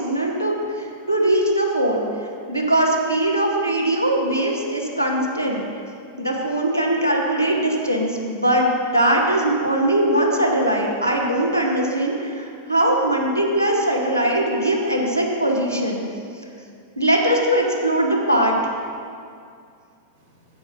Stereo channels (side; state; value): both; inverted; correlation -0.47